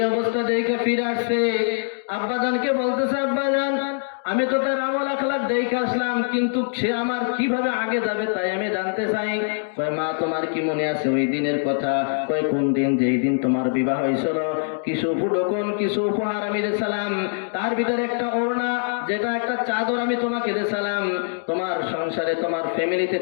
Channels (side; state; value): right; silent; digital silence